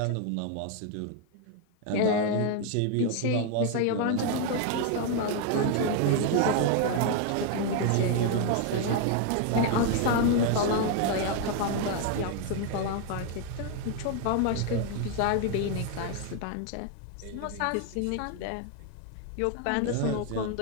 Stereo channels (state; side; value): different; both; correlation 0.00